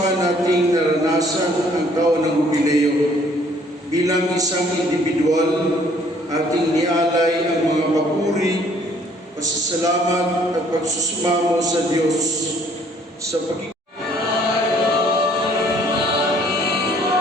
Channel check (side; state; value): both; normal; correlation 0.61